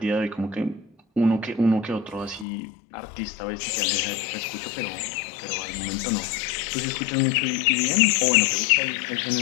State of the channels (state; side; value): drops out; right; at 2.5 s